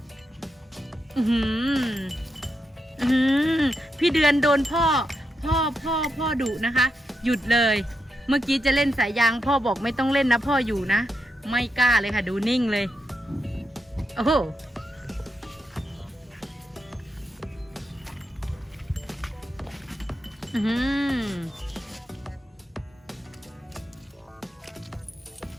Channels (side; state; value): both; normal; correlation 0.85